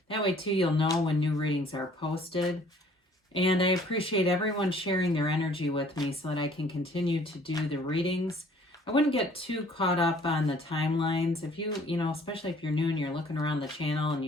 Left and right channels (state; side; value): normal; both; correlation 0.56